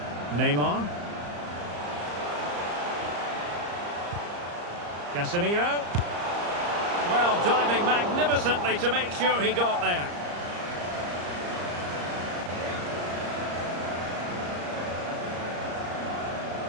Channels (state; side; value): late; left; 34 ms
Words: Neymar. Casemiro. Well, diving magnificently to make sure he got there.